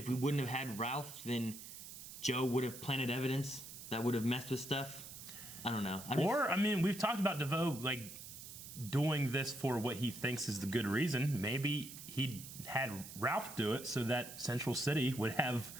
we wouldn't have had Ralph, then Joe would have planted evidence that would have messed with stuff? I don't know. I mean, we've talked about DeVoe, like, doing this for what he thinks is the good reason. Maybe he had Ralph do it so that Central City would have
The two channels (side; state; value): right; noise; hiss, 12 dB below the sound